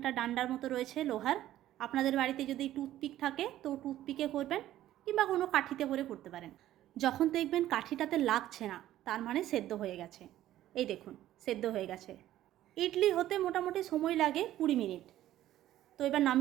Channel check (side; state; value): left; quieter; 13.4 dB